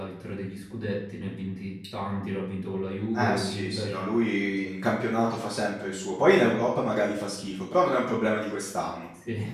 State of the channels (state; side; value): identical; both; correlation 1.00